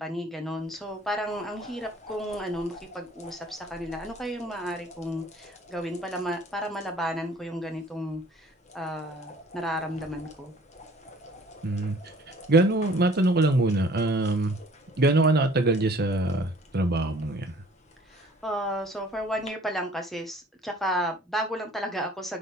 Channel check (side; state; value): both; normal; correlation 0.53